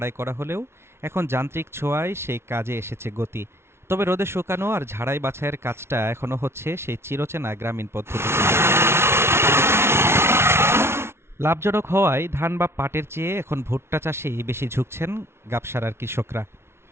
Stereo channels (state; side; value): late; left; 0.12 ms